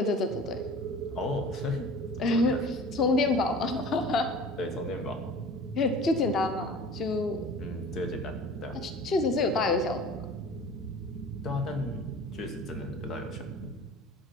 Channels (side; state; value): both; normal; correlation 0.42